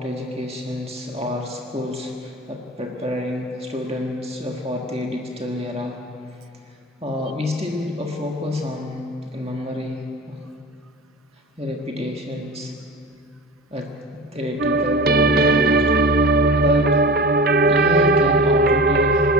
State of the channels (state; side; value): normal; both; correlation 0.34